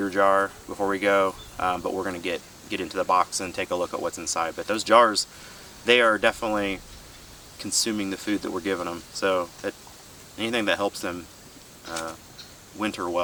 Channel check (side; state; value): both; identical; correlation 1.00